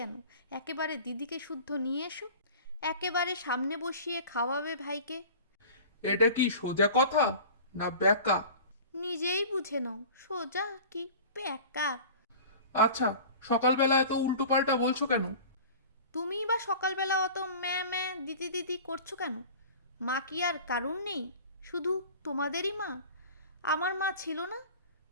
একেবারে দিদিকে শুদ্ধ নিয়ে এসো, একেবারে সামনে বসিয়ে খাওয়াবে ভাইকে। এটা কি সোজা কথা না ব্যাকা? নিজেই বুঝে নাও, সোজা কি প্যাকা। আচ্ছা, সকালবেলায় তো উল্টো পাল্টা বলছো কেন? তুমিই বা সকালবেলা অত ম্যা ম্যা দিদি দিদি করছো কেন? মা কি আর কারুর নেই? শুধু তোমাদেরই মা? আমার মা ছিল না?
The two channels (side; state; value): both; inverted; correlation -0.40